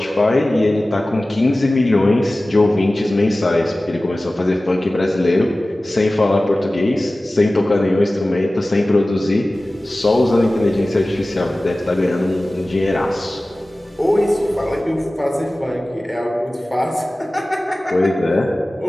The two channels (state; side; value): normal; both; correlation 0.97